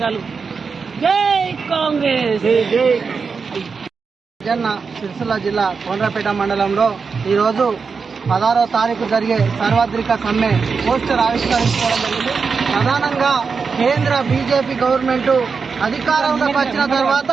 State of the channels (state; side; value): quieter; left; 5.2 dB